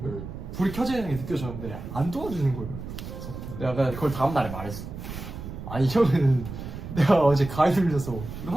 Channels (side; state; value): right; noise; rumble, 9 dB below the sound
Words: 불이 켜져 있는 게 느껴졌는데 안 도와주는 거예요. 그래서 내가 그걸 다음날에 말했어. 아니 형은 내가 어제 가위 눌려서 이거